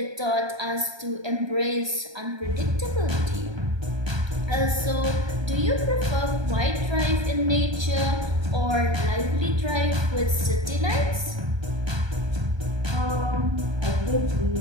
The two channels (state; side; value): late; left; 1.3 ms